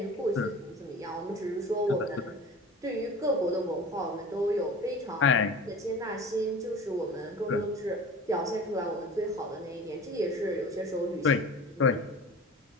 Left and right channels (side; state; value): both; normal; correlation 0.38